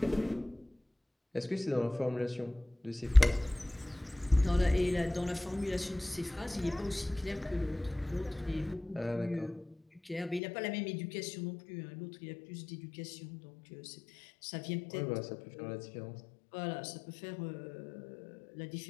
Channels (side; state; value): right; drops out; at 10.4 s